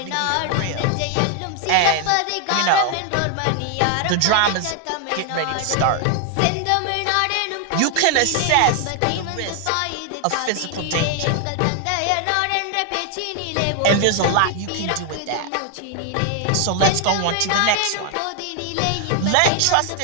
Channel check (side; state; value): both; different; correlation 0.00